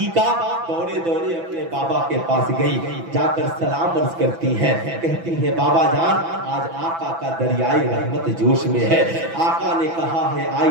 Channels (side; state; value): left; late; 6.0 ms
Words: دوڑے دوڑے اپنے بابا کے پاس گئی، جا کر سلام عرض کرتی ہیں، کہتی ہیں بابا جان آج آقا کا دریائے رحمت جوش میں ہے۔ آقا نے کہا ہے